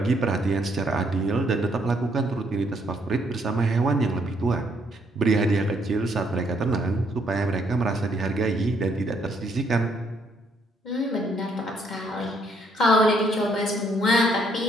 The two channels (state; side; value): normal; both; correlation 0.70